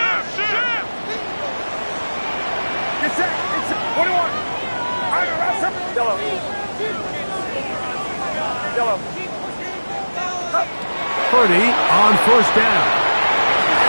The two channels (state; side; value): inverted; both; correlation -1.00